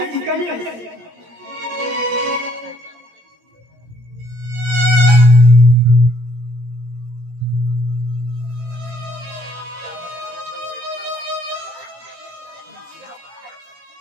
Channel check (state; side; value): late; left; 18 ms